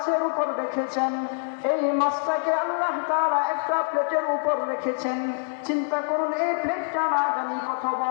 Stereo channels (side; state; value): right; silent; 60 dB below the other